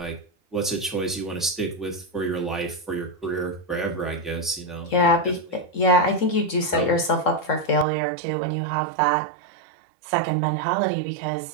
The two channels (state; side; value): drops out; left; at 7.9 s